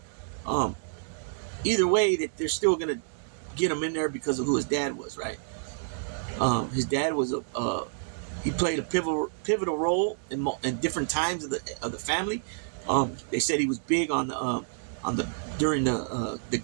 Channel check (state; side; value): silent; left; 59 dB below the other